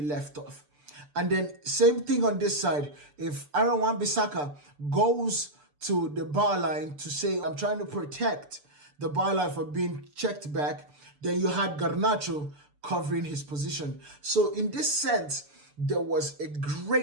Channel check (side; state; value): left; late; 6.8 ms